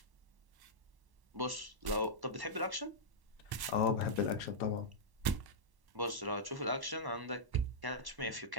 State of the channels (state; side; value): late; left; 1.1 ms